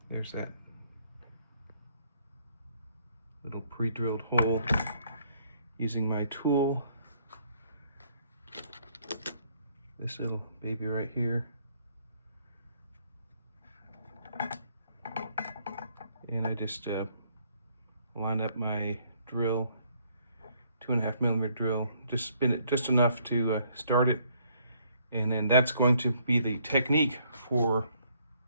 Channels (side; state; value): both; inverted; correlation -0.67